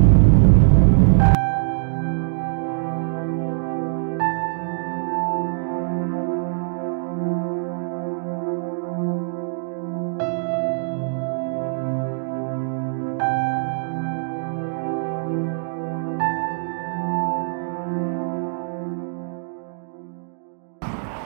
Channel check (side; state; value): left; silent; digital silence